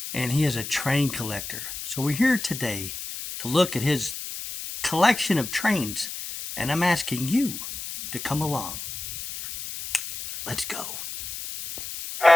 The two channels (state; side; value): noise; left; hiss, 8 dB below the sound